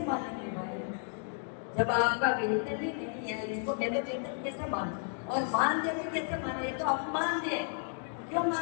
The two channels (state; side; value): silent; right; 56 dB below the other